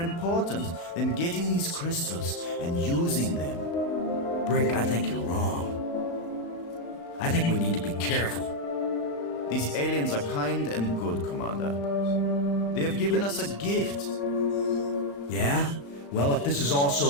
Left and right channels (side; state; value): right; late; 36 ms